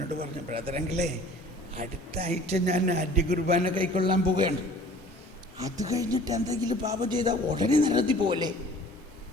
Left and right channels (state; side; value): normal; both; correlation 0.48